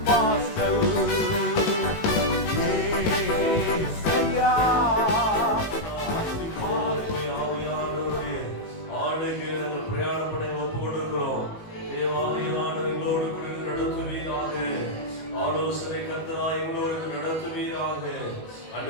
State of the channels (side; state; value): right; late; 19 ms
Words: வாசல். ஏசையா ஆலோசனை கர்த்தராய் எங்களோடு நடத்துவீராக.